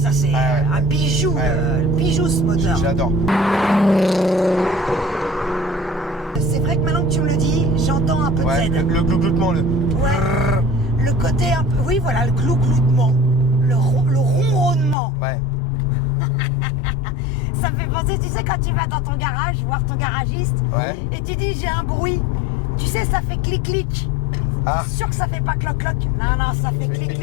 c'est Ah, ouais. un bijou, Ouais. bijou ce moteur. J'adore. C'est vrai que maintenant que tu me le dis, j'entends un peu Ouais, de Z. le glougloutement, le... Ouais. Le côté un peu. Oui, voilà, le glougloutement. Le ronronnement. Ouais. Ça me fait penser, tu sais, quand tu vas dans ton garage, voir ton garagiste, Ouais. et tu dis j'ai un bruit. Tu sais, ça fait clic-clic. Ah. Sûr que ça fait pas cloc-cloc. Non, ça fait clic-clic,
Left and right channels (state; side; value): drops out; right; at 15.0 s